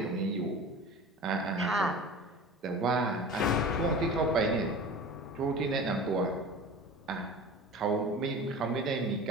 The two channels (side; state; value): both; normal; correlation 0.36